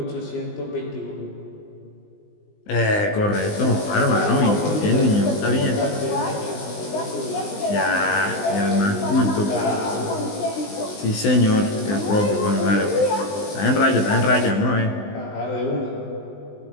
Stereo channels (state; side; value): late; right; 20 ms